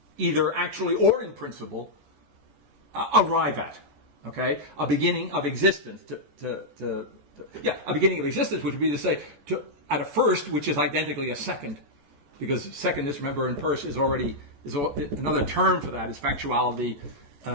either actually or in principle, arrive at. Okay, a beginning of existence. A beginning of existence, which would be to say at a first, which is identically a second, because secondness, remember, in Peirce is another term for that is factuality.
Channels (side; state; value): left; late; 14 ms